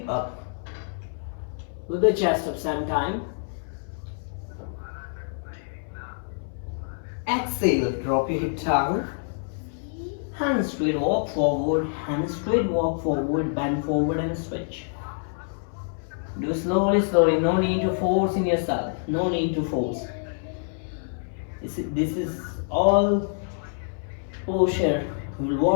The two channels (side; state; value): right; silent; 61 dB below the other